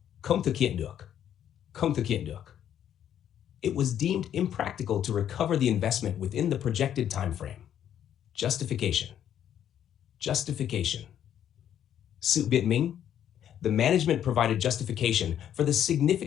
Không thực hiện được. Không thực hiện được. It was deemed impractical to recover the investment within the projected time frame. Justification. Justification. Sự biện minh. The management provided justification for the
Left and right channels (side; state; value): right; quieter; 10.1 dB